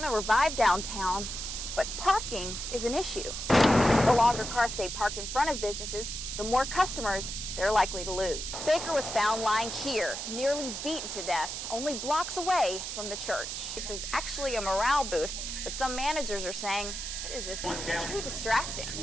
to revive downtown, but parking is an issue. The longer cars stay parked in front of businesses, the more customers they're likely to lose. Baker was found lying here, nearly beaten to death, only blocks away from the church. This is actually a morale boost, but some managers are saying it is just too distracting.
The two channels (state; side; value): noise; right; hiss, 5 dB below the sound